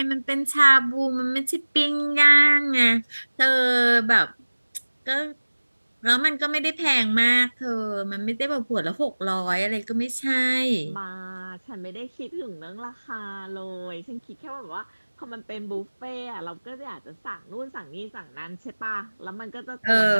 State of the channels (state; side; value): inverted; both; correlation -1.00